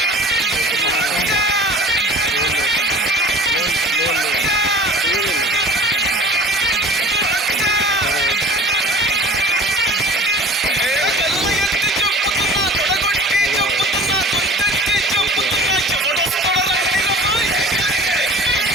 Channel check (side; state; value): both; normal; correlation 0.42